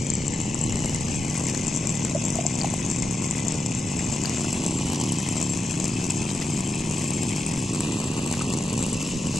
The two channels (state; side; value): normal; both; correlation 0.87